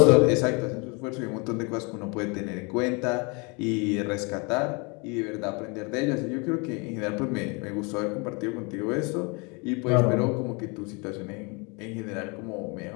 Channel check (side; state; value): right; quieter; 30.8 dB